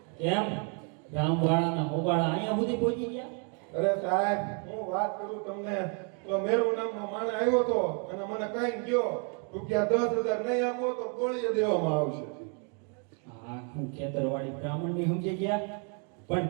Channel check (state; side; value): quieter; left; 39.4 dB